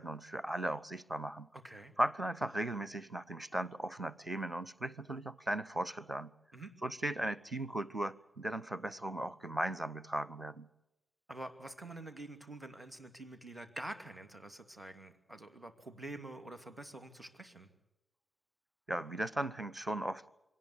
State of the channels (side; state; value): both; normal; correlation 0.87